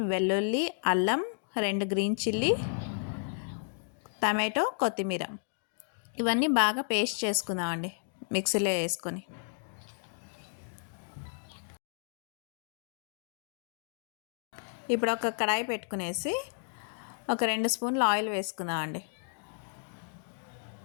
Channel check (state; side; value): silent; right; digital silence